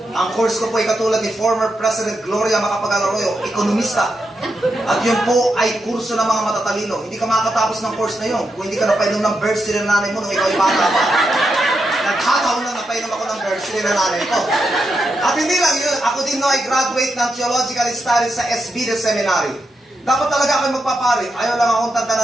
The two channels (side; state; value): both; normal; correlation 0.85